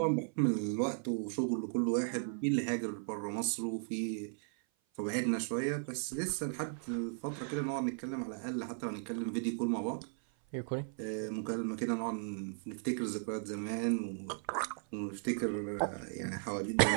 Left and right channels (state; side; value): silent; left; 54 dB below the other